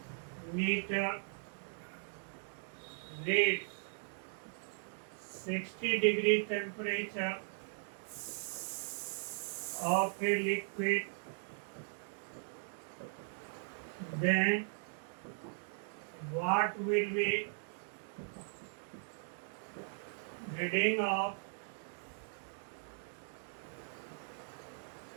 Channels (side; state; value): left; silent; digital silence